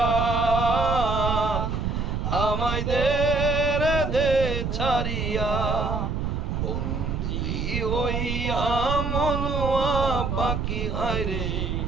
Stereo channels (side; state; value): right; noise; rumble, 1 dB below the sound